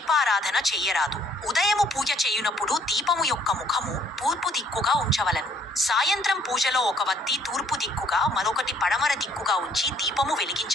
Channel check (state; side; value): normal; both; correlation 0.62